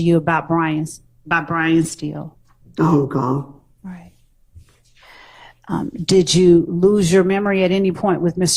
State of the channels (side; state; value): both; identical; correlation 1.00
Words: you about Brian Steele? I don't recall. Right. Did you lose your memory at any point with